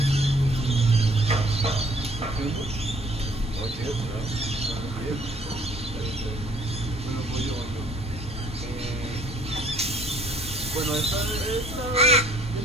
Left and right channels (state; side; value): normal; both; correlation 0.59